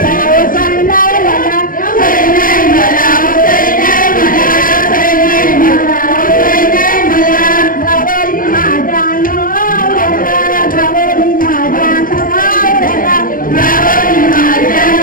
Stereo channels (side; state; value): right; late; 0.40 ms